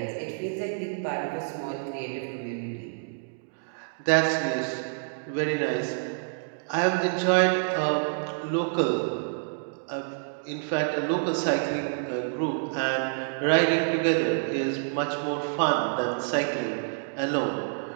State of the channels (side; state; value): left; silent; digital silence